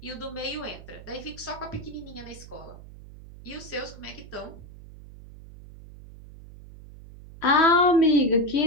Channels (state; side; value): noise; right; hum, 17 dB below the sound